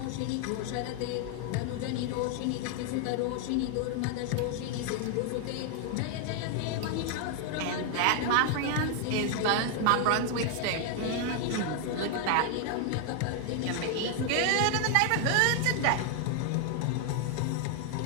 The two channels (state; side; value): different; both; correlation 0.00